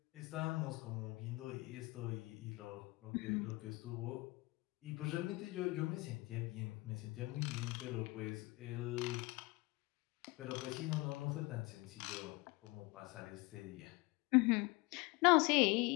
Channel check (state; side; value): quieter; right; 23.4 dB